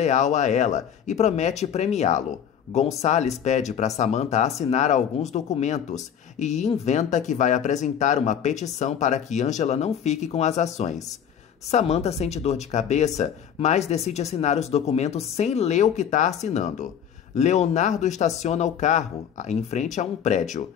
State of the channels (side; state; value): right; quieter; 8.6 dB